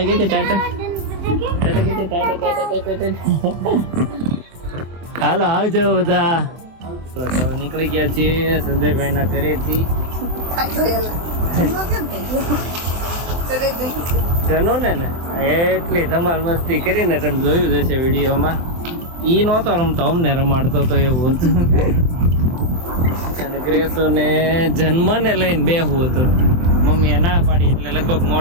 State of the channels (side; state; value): left; late; 24 ms